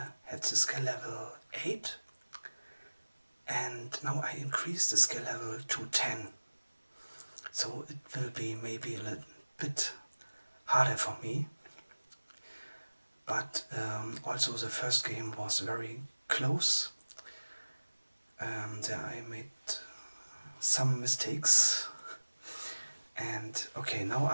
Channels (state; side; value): inverted; both; correlation -1.00